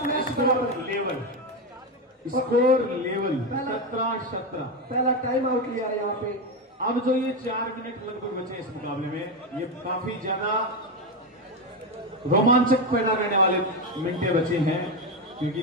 मैच बराबर। Level score level 17-17। पहला टाइम आउट लिया है यहाँ पे। अब जो ये 4 मिनट लगभग बचे इस मुकाबले में, ये काफी ज्यादा रोमांचक पैदा करने वाले मिनटें बचे हैं, क्योंकि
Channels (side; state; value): both; normal; correlation 0.11